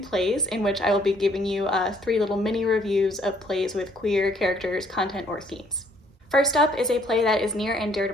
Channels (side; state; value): both; normal; correlation 0.64